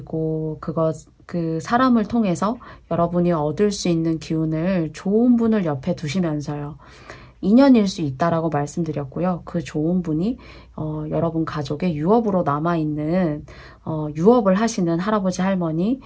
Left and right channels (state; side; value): identical; both; correlation 1.00